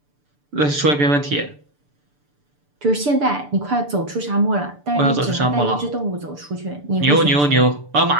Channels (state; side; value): late; left; 6.8 ms